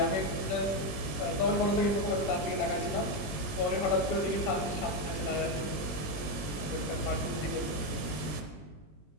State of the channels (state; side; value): late; right; 20 ms